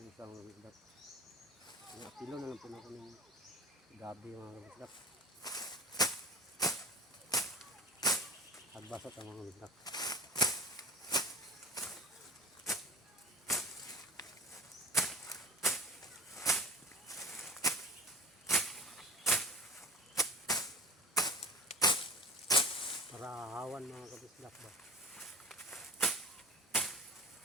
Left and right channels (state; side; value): normal; both; correlation 0.37